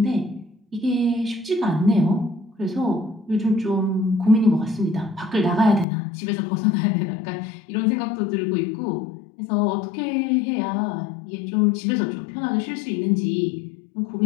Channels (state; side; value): drops out; right; at 5.9 s